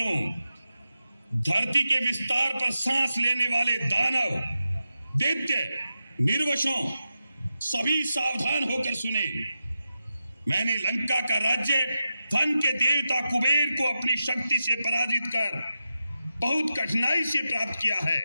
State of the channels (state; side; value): inverted; both; correlation -0.90